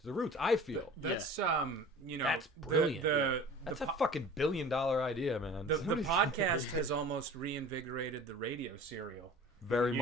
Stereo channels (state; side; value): normal; both; correlation 0.42